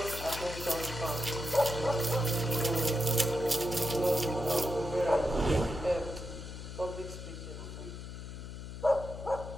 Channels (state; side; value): noise; left; hum, 9 dB below the sound